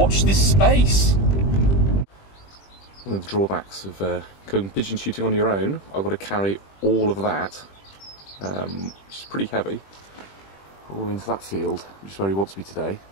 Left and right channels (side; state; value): right; late; 20 ms